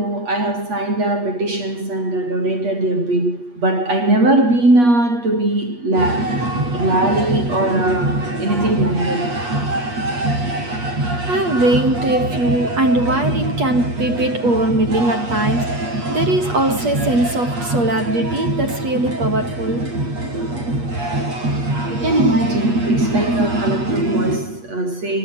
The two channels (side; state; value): left; late; 8.4 ms